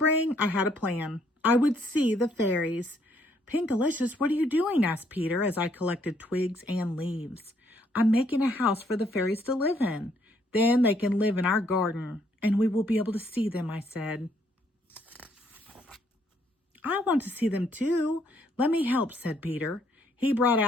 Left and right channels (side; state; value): both; normal; correlation 0.69